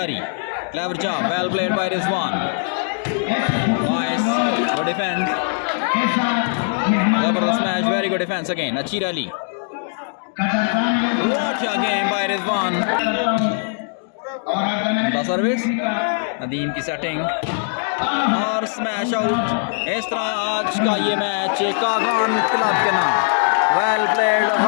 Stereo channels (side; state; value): right; silent; digital silence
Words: clever job, well played by Rizwan, nice, good defence, जबरदस्त match, very good defence again, अच्छी rally, what a game by Rizwan, service, Nadeem की सेटिंग और स्मैश आउट। इस तरह आज का ये मैच कागान क्लब के नाम, वेल प्लेड,